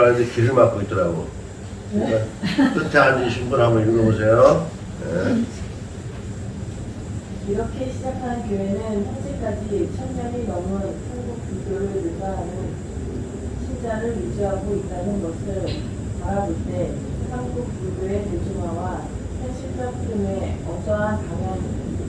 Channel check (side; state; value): both; identical; correlation 1.00